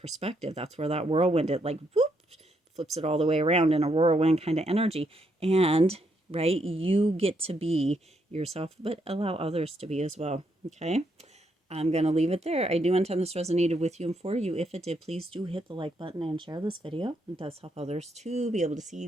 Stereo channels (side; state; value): both; normal; correlation 0.76